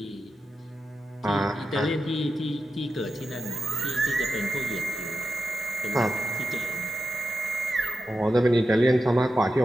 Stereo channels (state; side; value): normal; both; correlation 0.90